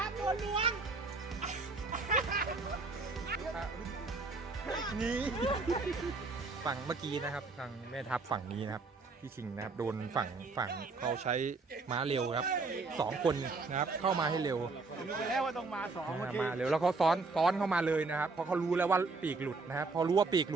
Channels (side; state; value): left; quieter; 3.9 dB